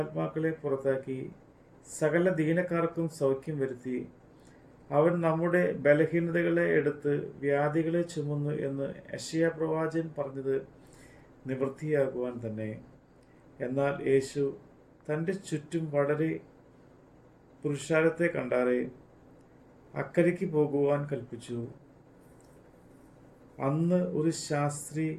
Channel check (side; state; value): both; identical; correlation 1.00